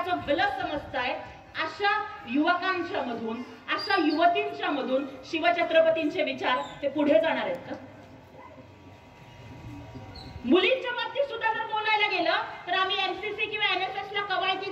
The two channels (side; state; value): both; identical; correlation 1.00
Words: भलं समजताय, अशा युवकांच्या मधून, अशा युवतींच्या मधून शिवछत्रपतींचे विचार हे पुढे जाणार आहेत का? मुलींच्या बाबतीत सुद्धा जर बोलायला गेलं तर आम्ही एमसीसी किंवा एनएसएस ला